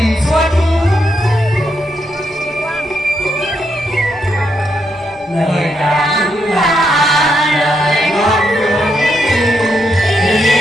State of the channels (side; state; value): both; normal; correlation 0.80